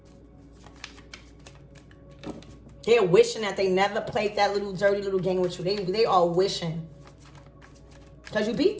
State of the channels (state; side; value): identical; both; correlation 1.00